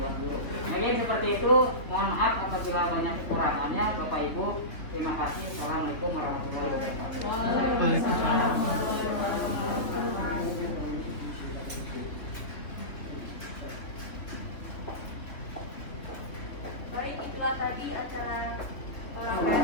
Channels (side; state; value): right; late; 3.1 ms